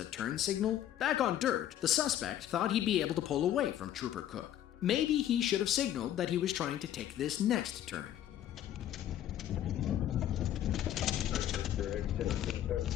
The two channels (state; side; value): quieter; right; 11.5 dB